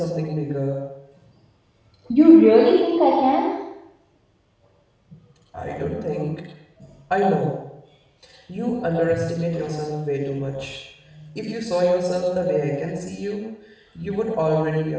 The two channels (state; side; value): identical; both; correlation 1.00